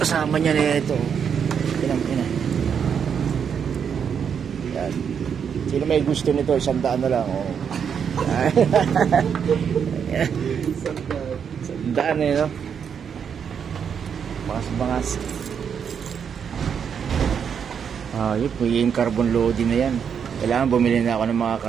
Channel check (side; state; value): left; quieter; 7.3 dB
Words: Kasama niya na ito. Yan. Yan. Sino may gusto nito? 100 na lang. Oh. 100 na yun, no? Bangas. Yun po yung carbon loading na yan. Kailangan bumili na ako ng mga